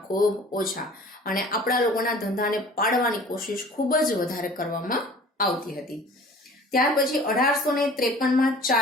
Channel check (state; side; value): normal; both; correlation 0.46